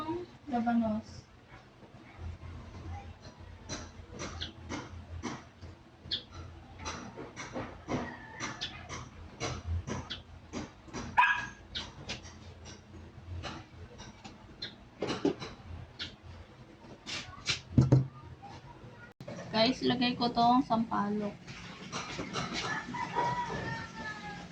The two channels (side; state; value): both; identical; correlation 1.00